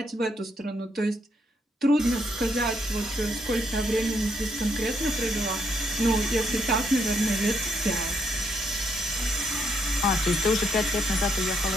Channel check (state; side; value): normal; both; correlation 0.74